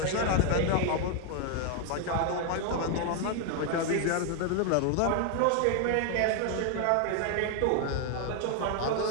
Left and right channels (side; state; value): both; different; correlation 0.00